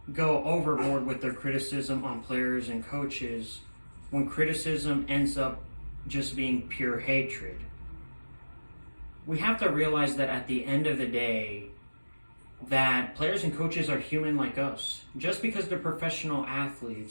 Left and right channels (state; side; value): inverted; both; correlation -1.00